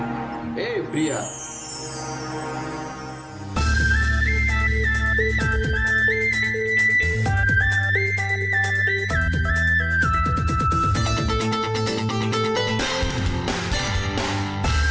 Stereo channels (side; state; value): both; identical; correlation 1.00